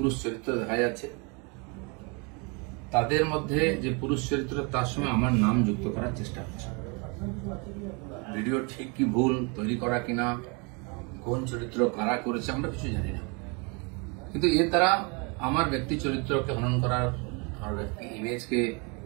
চরিত্র দেখা যাচ্ছে। তাদের মধ্যে যে পুরুষ চরিত্র তার সঙ্গে আমার নাম যুক্ত করার চেষ্টা হচ্ছে। ভিডিও ঠিক কি ভুল তৈরি করা কিনা, কোন চরিত্র কারা করেছে আমরা কিছু জানি না, কিন্তু এর দ্বারা আমার ব্যক্তি চরিত্রকে হনন করার, আমার ব্যক্তি ইমেজকে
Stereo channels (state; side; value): quieter; left; 32.0 dB